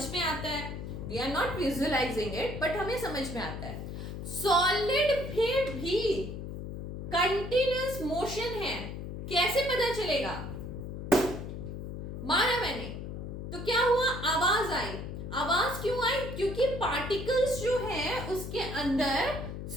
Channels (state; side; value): noise; left; hum, 7 dB below the sound